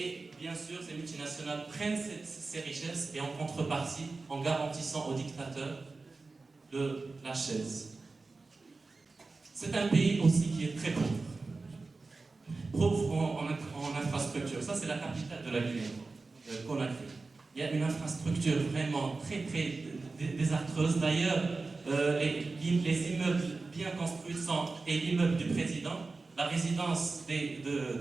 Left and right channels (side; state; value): left; quieter; 3.8 dB